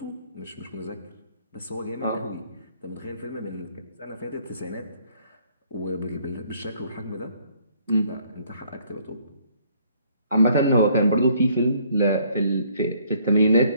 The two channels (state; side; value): inverted; both; correlation -0.63